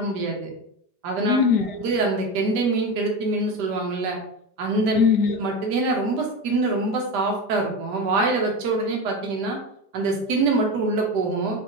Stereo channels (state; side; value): late; left; 5.0 ms